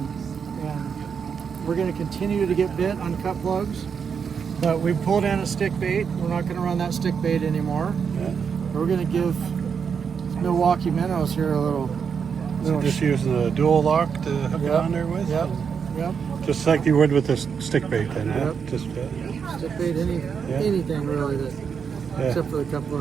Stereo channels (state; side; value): quieter; left; 6.6 dB